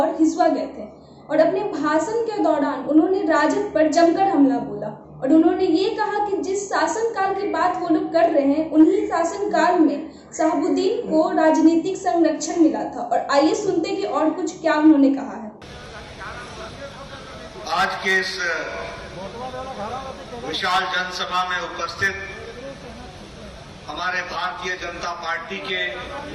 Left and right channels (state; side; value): identical; both; correlation 1.00